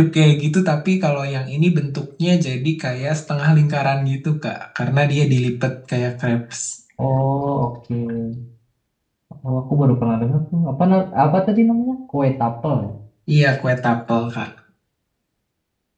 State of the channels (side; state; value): both; identical; correlation 1.00